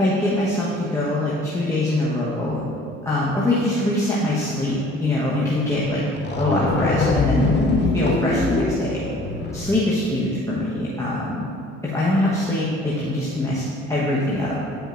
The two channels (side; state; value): both; normal; correlation 0.53